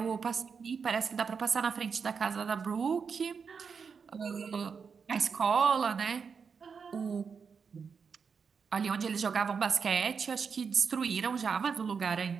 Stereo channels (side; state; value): left; quieter; 5.9 dB